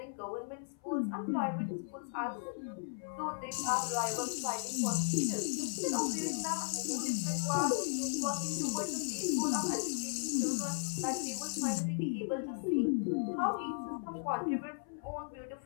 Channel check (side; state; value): right; silent; 54 dB below the other